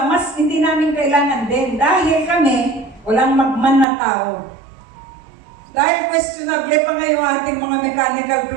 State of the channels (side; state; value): left; drops out; at 3.9 s